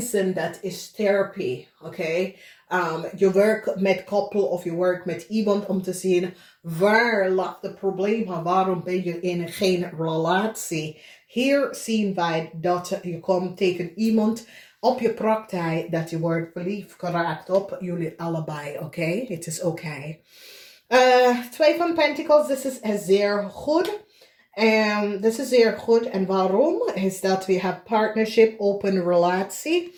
dat is therapie, oké? Je werkt met koppel of je werkt met iemand om te zien waar ligt het probleem en waarom ben je in geen relatie. Hier zien wij dat je komt tegen iemand op je praktijk dat je wordt verliefd geraakt op jullie allebei, oké? Het is oké. 2 van Pentacles, dit is zeer goed. Dit is zeer goed. En waarom? Is dat we hebben partnership, open relatie.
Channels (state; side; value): identical; both; correlation 1.00